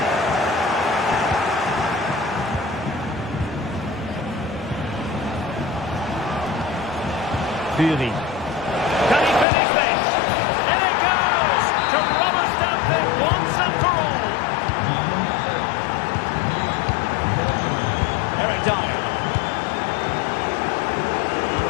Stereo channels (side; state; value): right; drops out; at 9.5 s